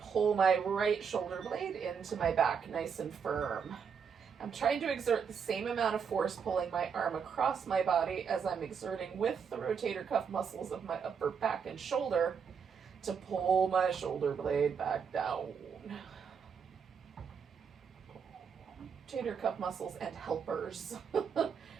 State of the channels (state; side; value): quieter; left; 6.6 dB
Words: pull my right shoulder blade into my back nice and firm. I'm trying to exert the same amount of force pulling my arm across my body as I'm exerting with the rotator cuff muscles of my upper back and shoulder to pull my shoulder blade back down. Rotator cuff muscles and helpers